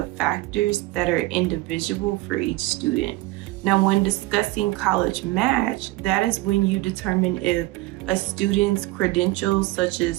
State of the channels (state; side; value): quieter; left; 19.5 dB